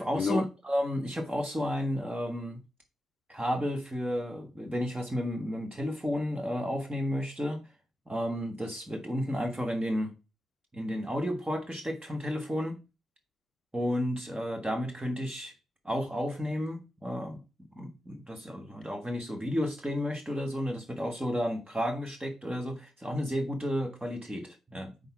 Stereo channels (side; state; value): both; normal; correlation 0.89